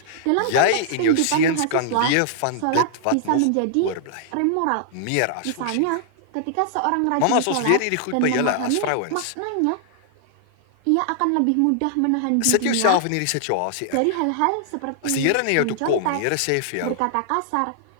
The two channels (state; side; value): different; both; correlation -0.01